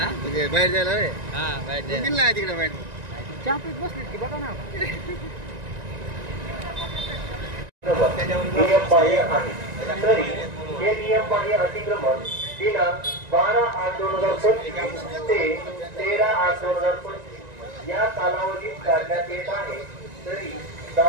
म्हणजे बाहेर जायला रे? हा बाहेर जायला गेला तिकडे बाहेर चहा पीत बसलीत की बघा ना नियम बाह्य आहे। तरी हे नियम बाह्य अतिक्रमण दिनांक 12/8/2025 ते 13/8/2025 या कालावधीत काढण्यात येत आहे। तरी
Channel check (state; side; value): late; left; 1.9 ms